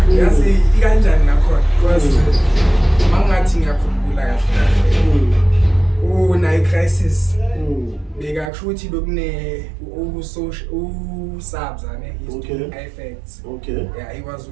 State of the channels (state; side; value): drops out; left; at 8.5 s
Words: Yazi ikanjani nakhona, because mangathi ngiyakhumbula kahle una-crisis bekakusho ukuthi bekune usabzane effects. Okay. Yeah, he was